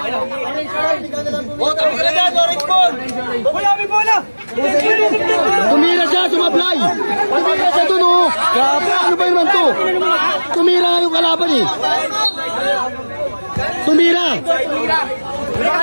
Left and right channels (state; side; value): inverted; both; correlation -1.00